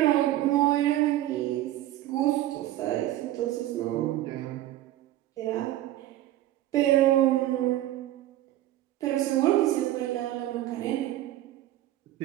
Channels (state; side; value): quieter; left; 14.3 dB